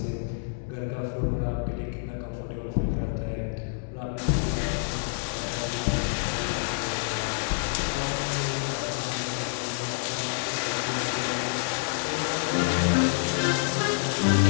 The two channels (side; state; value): right; silent; 60 dB below the other